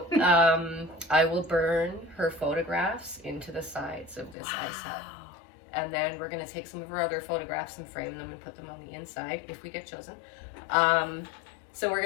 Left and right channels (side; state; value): right; drops out; at 4.4 s